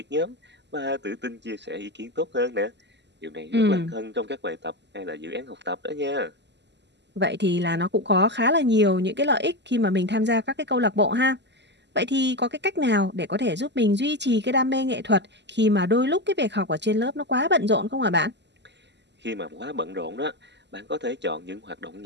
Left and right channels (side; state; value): left; late; 0.51 ms